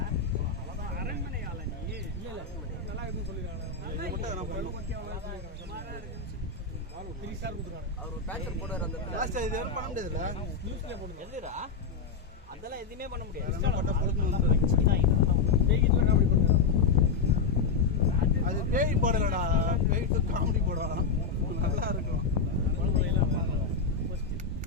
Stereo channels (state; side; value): quieter; right; 5.1 dB